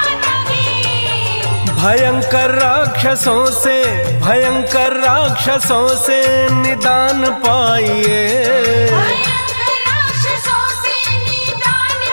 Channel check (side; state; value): both; inverted; correlation -1.00